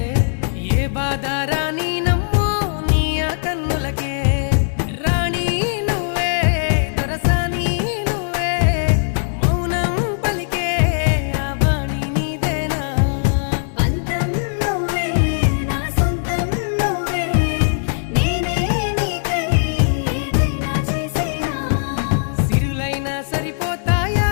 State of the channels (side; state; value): right; silent; 66 dB below the other